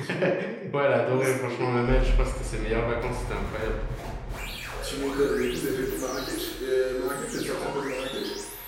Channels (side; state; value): both; identical; correlation 1.00